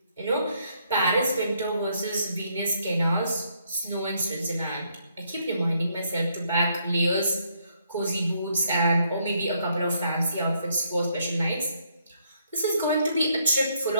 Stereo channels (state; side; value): inverted; both; correlation -0.72